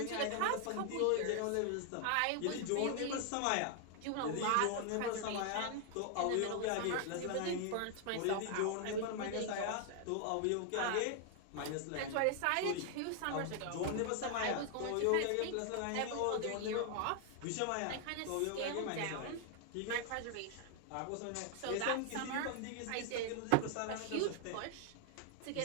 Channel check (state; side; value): different; both; correlation 0.00